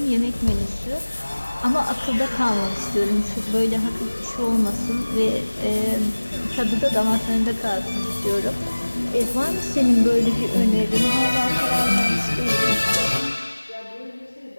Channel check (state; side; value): inverted; both; correlation -1.00